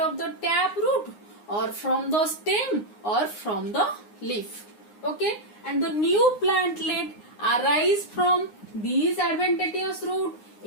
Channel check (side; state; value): right; late; 9.7 ms